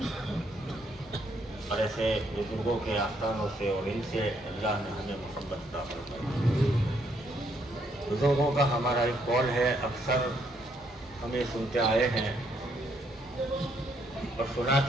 اور ایسے بزرگوں کے آستانوں سے اور ان سے اللہ نے ہمیں محبت عطا فرمائی۔ بزرگوں کا ہمارا ایک قول ہے، اکثر ہمیں سنتے آئے ہیں اور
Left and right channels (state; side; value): normal; both; correlation 0.72